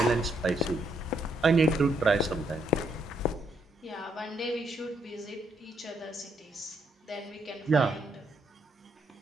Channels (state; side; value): normal; both; correlation 0.74